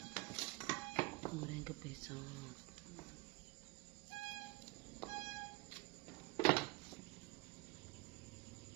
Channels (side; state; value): left; quieter; 22.8 dB